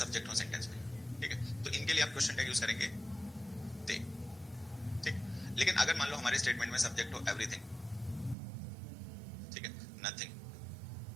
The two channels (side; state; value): left; drops out; at 8.3 s